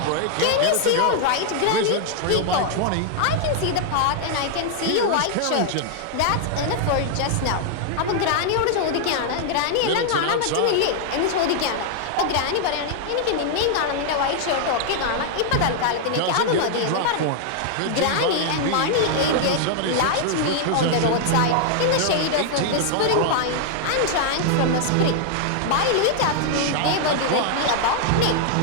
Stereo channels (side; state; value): both; different; correlation 0.00